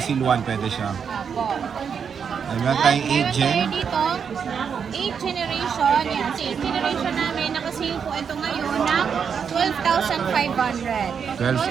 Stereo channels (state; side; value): quieter; left; 6.8 dB